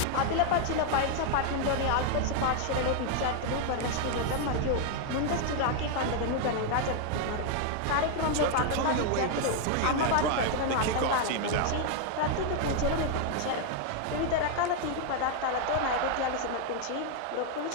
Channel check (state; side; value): different; both; correlation 0.00